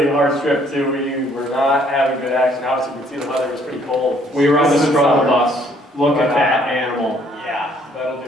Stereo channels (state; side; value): normal; both; correlation 0.63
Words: hard strip too. We were not having good action. Obviously, you can see the weather was pretty cold. We were on the struggle bus. Look at that animal. Yeah, that'll